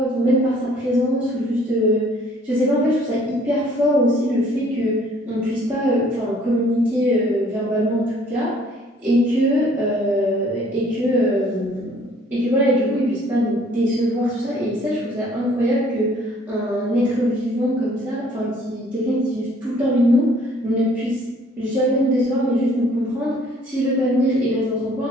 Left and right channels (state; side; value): normal; both; correlation 0.58